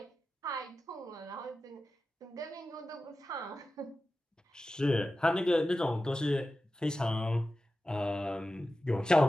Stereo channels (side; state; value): both; normal; correlation 0.94